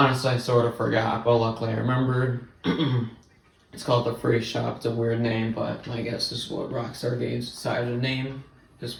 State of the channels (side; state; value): both; identical; correlation 1.00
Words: I sort of forgot, but luckily I remembered. It's called the Freak Shop. It's a weird name, but I guess this is what Rockstar Games decided to name